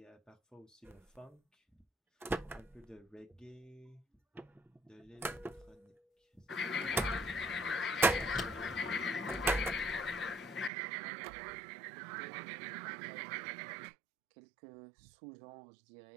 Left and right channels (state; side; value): drops out; left; at 10.7 s